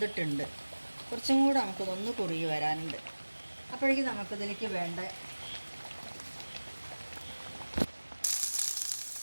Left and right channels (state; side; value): inverted; both; correlation -1.00